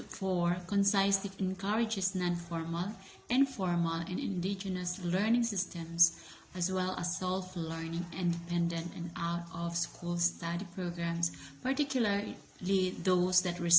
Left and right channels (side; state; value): both; identical; correlation 1.00